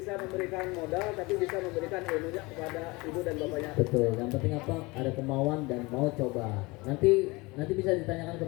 memberikan modal, tapi bisa memberikan ilmunya kepada ibu dan bapaknya. Betul, yang penting apa? Ada kemauan dan mau coba. Nanti bisa ditanyakan ke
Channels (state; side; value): quieter; right; 24.1 dB